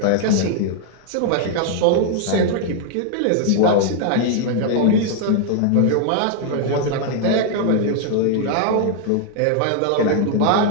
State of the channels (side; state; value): both; different; correlation 0.00